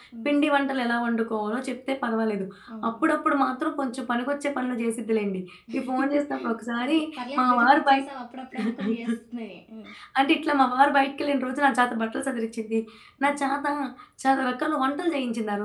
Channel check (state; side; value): identical; both; correlation 1.00